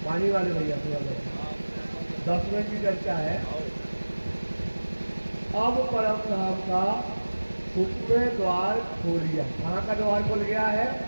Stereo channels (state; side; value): inverted; both; correlation -1.00